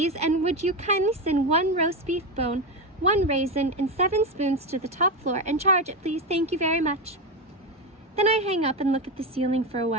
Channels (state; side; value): normal; both; correlation 0.14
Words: and would you kindly send 1 roast beef bone, 1 raisin, and 7 spoons to the top floor, and charge it, please. Thank you very much. Then I hang up and look at the ceiling for a